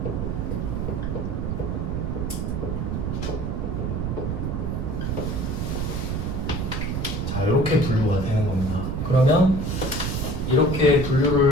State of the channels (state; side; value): noise; right; rumble, 1 dB below the sound